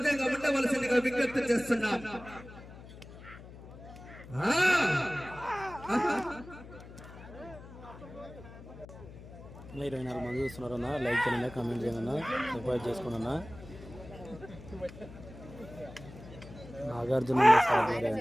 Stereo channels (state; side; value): noise; left; hum, 16 dB below the sound